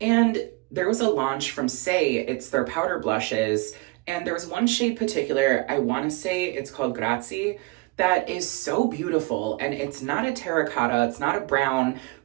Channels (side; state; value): left; quieter; 24.8 dB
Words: there was a launch from Say, it's their powder blushes, and there was one shade particular, I want to say it's called Grazie, that is so beautiful. And it's not a terracotta, it's not a brown,